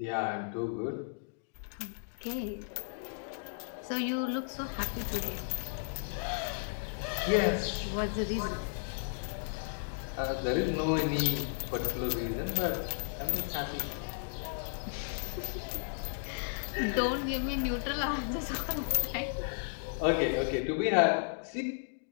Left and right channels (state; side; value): silent; right; digital silence